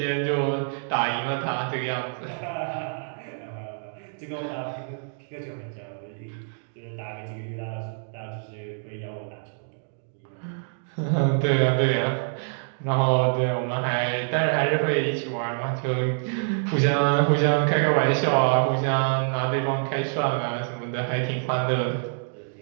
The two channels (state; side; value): silent; left; digital silence